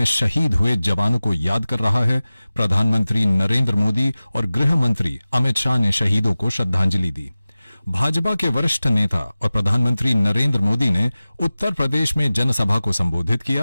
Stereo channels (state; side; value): inverted; both; correlation -0.97